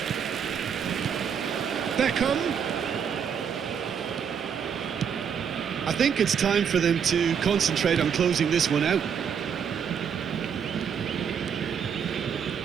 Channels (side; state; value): left; quieter; 7.4 dB